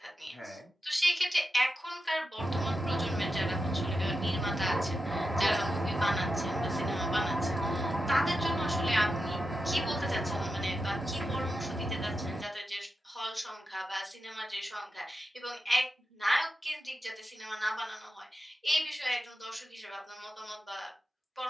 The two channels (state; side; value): normal; both; correlation 0.90